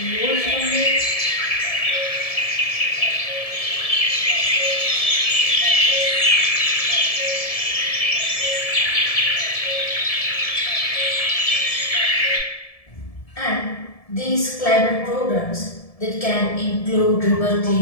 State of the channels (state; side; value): late; right; 1.7 ms